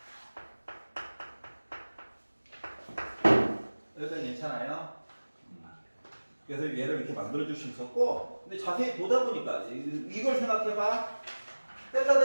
여기까지 괜찮아요? 그래서 얘를 이렇게 만들어줄 수 있었고, 근데 자세히 보다 보니까 이걸 생각해봐. 세타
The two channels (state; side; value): inverted; both; correlation -1.00